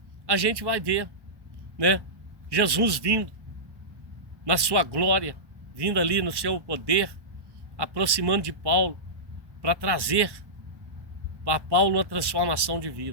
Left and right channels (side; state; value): left; late; 1.1 ms